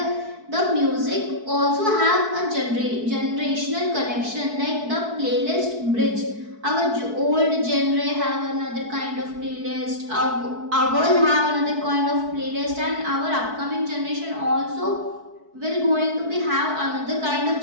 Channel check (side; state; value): left; late; 4.6 ms